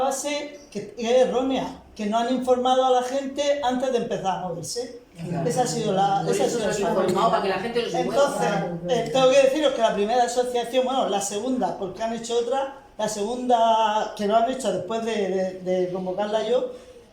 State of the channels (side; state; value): both; identical; correlation 1.00